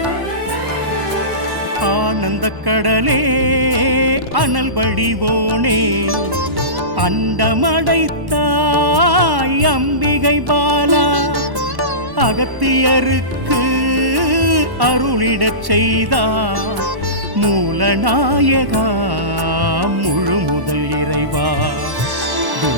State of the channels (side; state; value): left; late; 1.1 ms